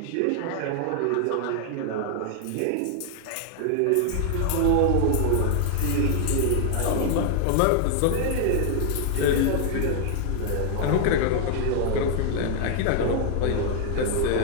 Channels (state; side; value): different; both; correlation 0.00